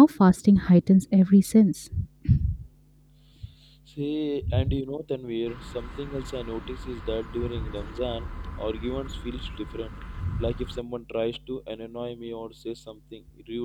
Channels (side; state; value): both; identical; correlation 1.00